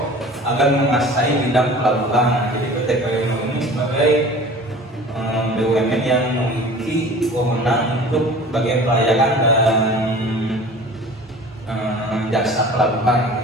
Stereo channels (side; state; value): both; normal; correlation 0.42